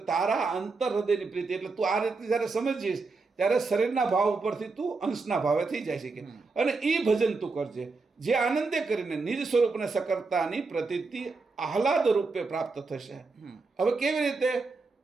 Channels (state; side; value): quieter; left; 4.0 dB